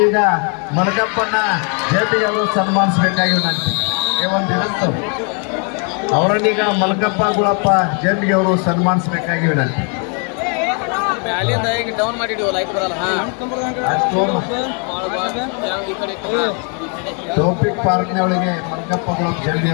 ಮಲಕಪ್ಪನ ಜಯಂತಿಗೆ ಅವರು ಸನ್ಮಾನಿಸಬೇಕಾಗಿ ವಿನಂತಿ. ಒಂದಿನಂತು ಅವರನ್ನೀಗ ಮಲಕಪ್ಪ ಗುಳಪ್ಪ ಜಯಂತಿಗೆ ಅವರು ಸನ್ಮಾನಿಸಬೇಕಾಗಿ ವಿನಂತಿ. ಡೌನ್ ಮಾಡಿಡಿವ ಲೈಕ್ ಬರಲ್ಲ. ಟೋಪಿಕ್ ಪಾರ್ಕ್ನವಳಿಗೆ ಮಲಕಪ್ಪ ಗುಳಪ್ಪ ಜಯಂತಿ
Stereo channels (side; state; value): right; quieter; 38.4 dB